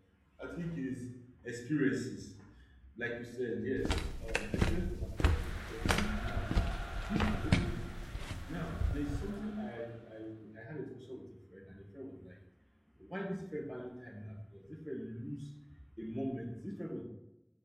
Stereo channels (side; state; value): both; identical; correlation 1.00